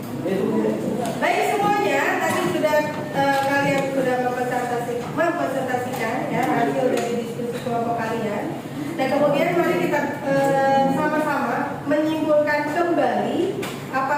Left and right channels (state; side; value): identical; both; correlation 1.00